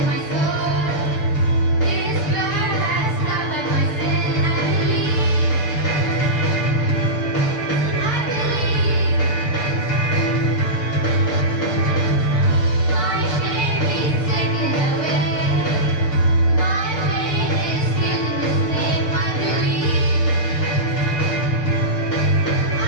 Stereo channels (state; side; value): late; right; 6.8 ms